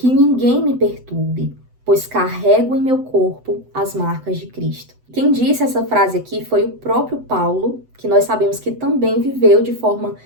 ninguém me perturbe, pois carrego em meu corpo as marcas de Cristo. Quem disse essa frase aqui foi o próprio Paulo, que nós sabemos que também viveu de forma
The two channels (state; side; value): late; left; 7.9 ms